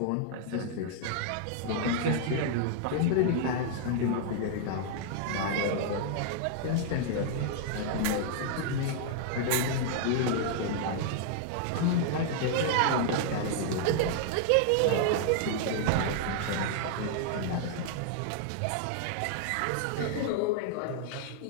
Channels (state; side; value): different; both; correlation -0.01